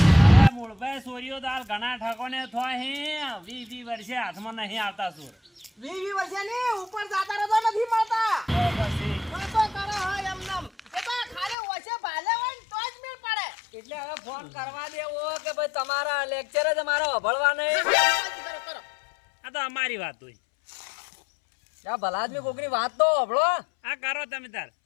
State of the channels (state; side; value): drops out; right; at 11.6 s